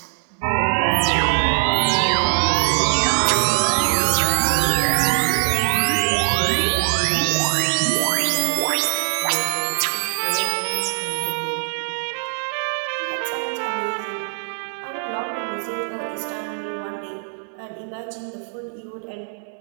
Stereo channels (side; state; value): left; silent; 64 dB below the other